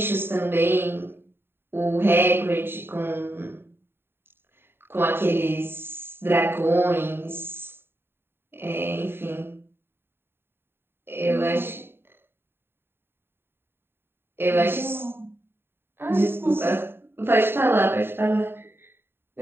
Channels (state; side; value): late; left; 0.11 ms